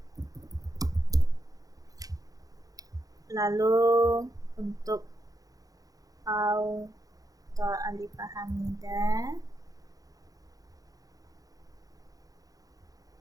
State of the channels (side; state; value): left; late; 0.17 ms